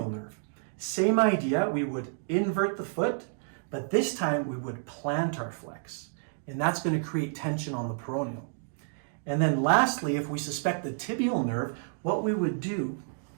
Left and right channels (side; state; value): left; silent; digital silence